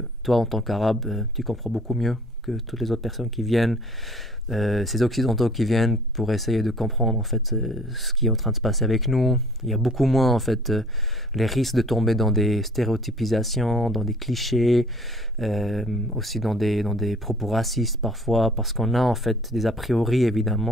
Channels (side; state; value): both; normal; correlation 0.54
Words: toi, en tant qu'arabe, tu comprends beaucoup mieux que toutes les autres personnes qui viennent. Ces occidentaux qui viennent pour essayer de comprendre en fait ce qui est en train de se passer avec nous. Il y a beaucoup moins en fait les risques de tomber dans des stéréotypisations, dans des clichés, aussi dans des propos racistes parfois, parce qu'on a en fait des a priori